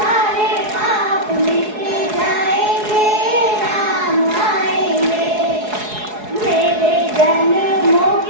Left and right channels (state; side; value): late; left; 4.7 ms